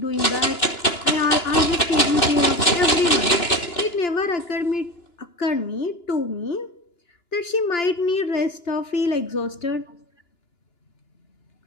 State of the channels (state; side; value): late; right; 2.9 ms